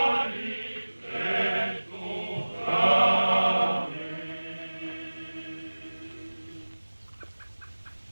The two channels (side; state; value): both; inverted; correlation -1.00